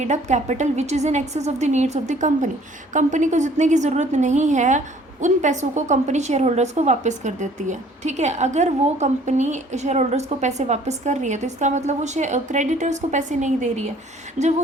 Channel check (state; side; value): normal; both; correlation 0.56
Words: up capital which is in excess of the needs of the company. Company को जितने की ज़रूरत नहीं है उन पैसों को कंपनी शेयर होल्डर्स को वापस कर देती है, ठीक है। अगर वो कंपनी शेयर होल्डर्स को पैसे वापस कर रही है तो इसका मतलब वो क्रेडिटर्स को पैसे नहीं दे रही है। जब वो